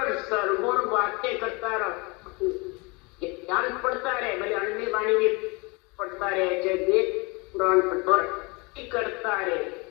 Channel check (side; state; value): right; quieter; 28.1 dB